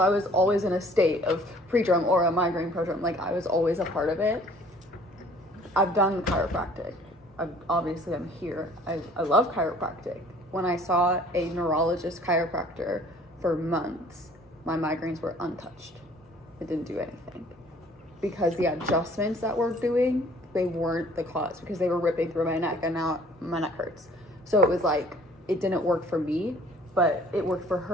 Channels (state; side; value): normal; both; correlation 0.54